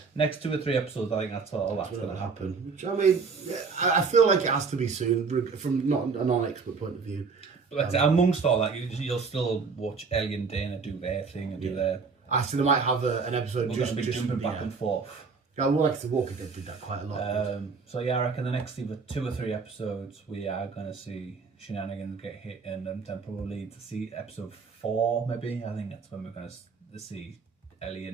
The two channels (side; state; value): left; quieter; 5.0 dB